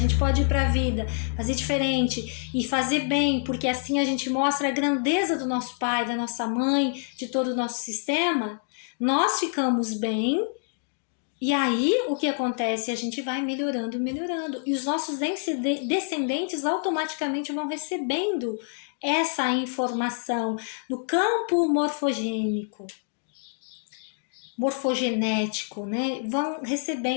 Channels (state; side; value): silent; right; 60 dB below the other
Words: pode ir pra vida, fazer diferente e fazer bem, porque assim a gente mostra a grandeza do nosso pai, da nossa mãe, de todo o nosso sistema, nós ficamos bem. E aí o que acontece? A gente vai melhorando, melhorando. E os nossos descendentes automaticamente vão recebendo essa informação no campo morfogenético, né? Vão